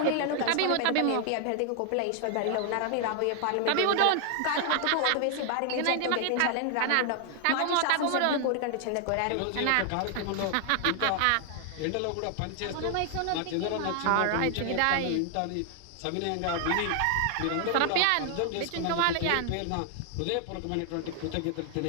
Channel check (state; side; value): different; both; correlation 0.00